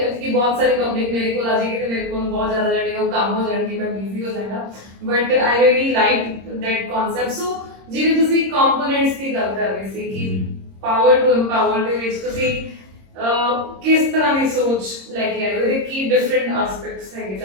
ਬਹੁਤ ਸਾਰੀ ਪਬਲਿਕ ਮੇਰੇ ਕੋਲ ਆ ਜਾਏਗੀ ਤੇ ਮੇਰੇ ਕੋਲ ਬਹੁਤ ਜ਼ਿਆਦਾ ਜਿਹੜੇ ਉਹ ਕੰਮ ਹੋ ਜਾਣਗੇ, ਮੈਂ ਬਿਜ਼ੀ ਹੋ ਜਾਵਾਂਗਾ। But I really like that concept. So ਜਿਵੇਂ ਤੁਸੀਂ ਕੰਪੋਨੈਂਟਸ ਦੀ ਗੱਲ ਕਰ ਰਹੇ ਸੀ ਕਿ ਪਾਵਰ ਟੂ ਐਮਪਾਵਰ ਦੇ ਵਿੱਚ ਤੁਸੀਂ ਕਿਸ ਤਰ੍ਹਾਂ ਦੀ ਸੋਚ ਲੈ ਕੇ ਆਏ ਹੋ, ਇਹਦੇ ਕੀ ਡਿਫਰੈਂਟ ਐਸਪੈਕਟਸ ਹੈਗੇ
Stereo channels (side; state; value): left; late; 26 ms